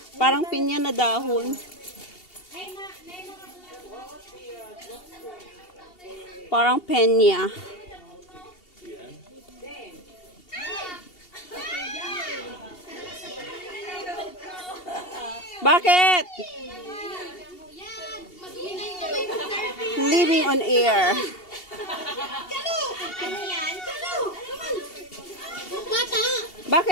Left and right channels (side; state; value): right; late; 2.7 ms